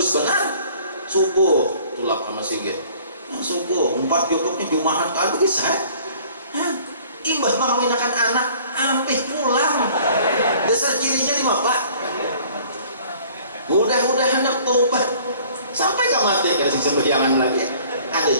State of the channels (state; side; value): inverted; both; correlation -0.53